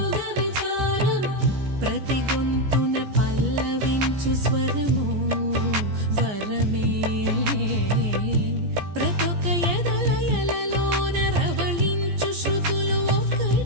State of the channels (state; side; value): late; left; 14 ms